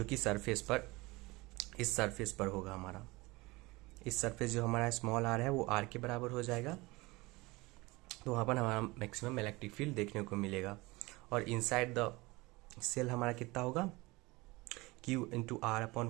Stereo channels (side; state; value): left; quieter; 22.6 dB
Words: कि सरफेस पर इस सरफेस पर होगा हमारा। इस सरफेस जो हमारा स्मॉल आर है वो आर के बराबर हो जाएगा, तो वहाँ पर हमारा मैक्सिमम इलेक्ट्रिक फील्ड देखने को मिलेगा। और इनसाइड द सेल हमारा कितना होगा Q into R